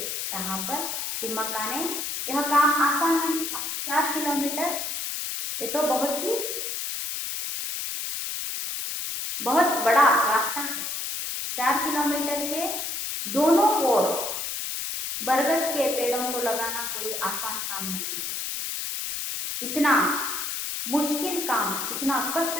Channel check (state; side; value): noise; left; hiss, 4 dB below the sound